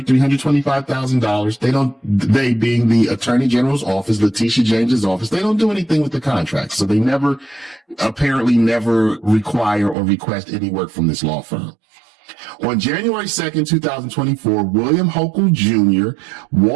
$325,000. They being the Attorney General's office, Letitia James's office, they don't do anything with the contract. So they apparently never require or request any work from this law firm. On January 2nd, 2024, William Hochul Jr.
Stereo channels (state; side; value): drops out; left; at 10.0 s